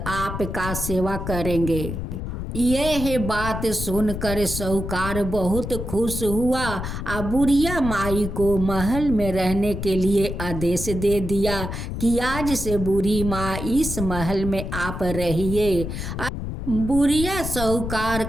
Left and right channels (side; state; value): left; noise; rumble, 5 dB below the sound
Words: आपका सेवा करेंगे। यह बात सुनकर साहूकार बहुत खुश हुआ और बुढ़िया माई को महल में रहने के लिए आदेश दे दिया कि आज से बूढ़ी माँ इस महल में आप रहिए। बुढ़िया साहूकार